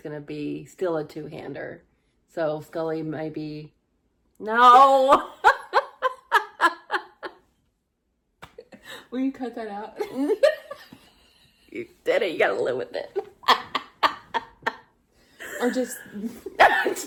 going to be still a two-hander. So Scully maybe... No! Will you cut that out? You did it. You got to live with it. Or just...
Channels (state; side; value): identical; both; correlation 1.00